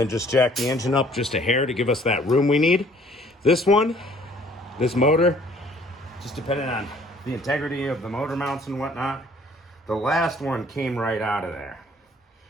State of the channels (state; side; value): normal; both; correlation 0.57